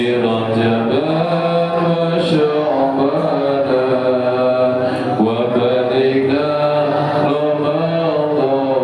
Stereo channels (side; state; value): both; identical; correlation 1.00